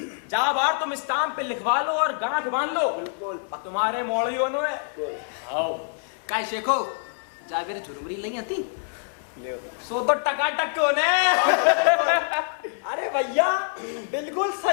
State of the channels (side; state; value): right; silent; 61 dB below the other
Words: जहाँ बार तुम स्टाम्प पे लिखवा लो और गांठ बांध लो तुम्हारे मोड़ियों ने आओ काय शेखो जागर झुरमुरी नहीं आती सो तो टकाटक को ने अरे भैया बिल्कुल